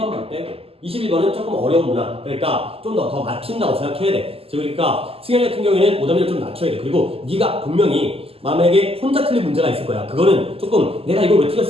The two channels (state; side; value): late; left; 0.28 ms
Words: 빼고 21번은 조금 어려운 문항 그러니까 좀 더 맞춘다고 생각해야 돼. 그러니까 승현이 같은 경우에는 오답률을 좀 낮춰야 돼. 그리고 네가 분명히 만약에 혼자 틀린 문제가 있을 거야. 그거는 조금 내가 이걸 왜